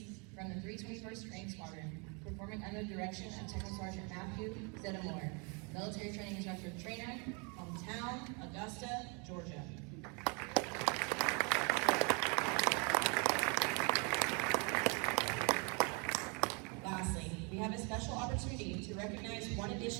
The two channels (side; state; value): left; quieter; 33.7 dB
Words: from the 321st Training Squadron, performing under the direction of Technical Sergeant Matthew Zeddemore, Military Training Instructor Trainer, hometown, Augusta, Georgia. Lastly, we have a special opportunity to recognize one